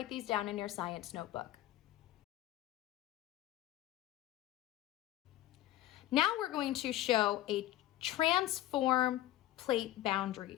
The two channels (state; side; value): quieter; right; 14.3 dB